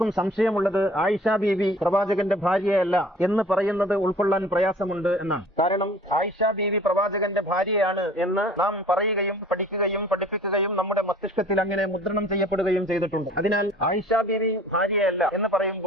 സംശയമുള്ളത് ആയിഷ ബീവി പ്രവാചകന്റെ ഭാര്യയല്ല എന്ന് പറയുന്നത് ഉൾക്കൊള്ളാൻ പ്രയാസമുണ്ട് എന്നാണ്. കാരണം ആയിഷ ബീവി പ്രവാചകന്റെ ഭാര്യയാണ് എന്ന് നാം പറയുകയും പഠിക്കുകയും പഠിപ്പിക്കുകയും നമ്മുടെ മസ്തിഷ്കത്തിൽ അങ്ങനെ മുദ്രണം ചെയ്യപ്പെടുകയും ചെയ്തിട്ടുണ്ട്. അതിനാൽ ആയിഷ ബീവി ഭാര്യയല്ല എന്ന്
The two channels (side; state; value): both; normal; correlation 0.49